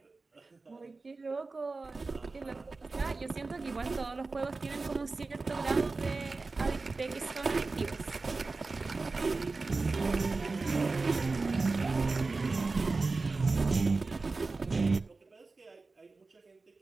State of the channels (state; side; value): quieter; left; 3.8 dB